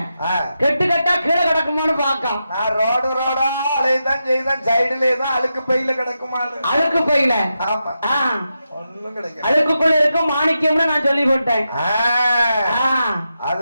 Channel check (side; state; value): both; inverted; correlation -0.88